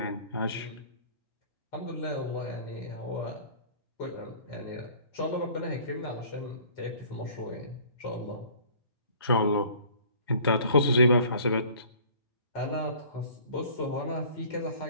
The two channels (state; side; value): inverted; both; correlation -0.50